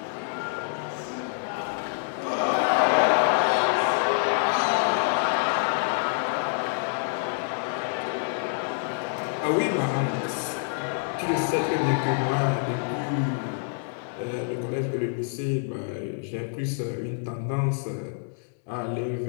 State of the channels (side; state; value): right; silent; digital silence